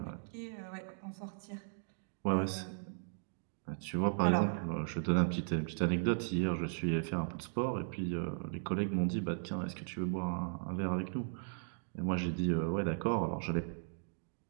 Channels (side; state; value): left; silent; digital silence